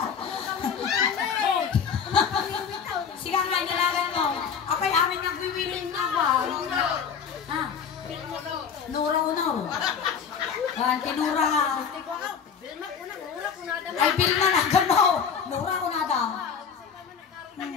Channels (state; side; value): quieter; right; 6.9 dB